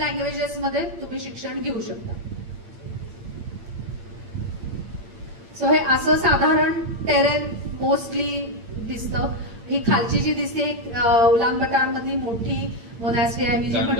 मध्ये तुम्ही शिक्षण घेऊ शकता. सो हे असं साधारण टेरेन मोस्टली दिसतं. ही खालची जी दिसते उलान बटार मधली मोठी मोनॅस्ट्री आहे, मी जी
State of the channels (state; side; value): late; left; 8.8 ms